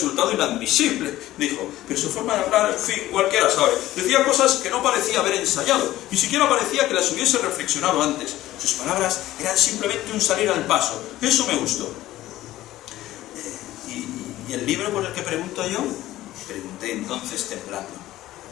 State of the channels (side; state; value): right; quieter; 15.2 dB